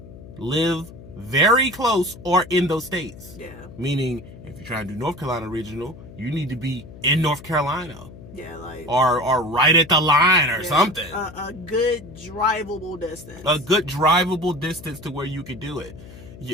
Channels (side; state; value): left; noise; hum, 17 dB below the sound